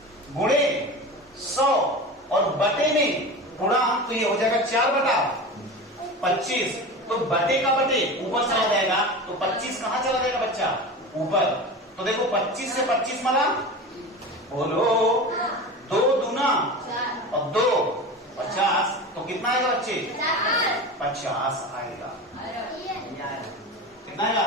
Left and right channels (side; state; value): both; normal; correlation 0.30